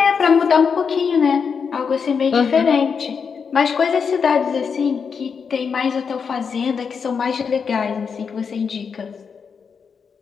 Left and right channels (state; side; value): quieter; right; 6.1 dB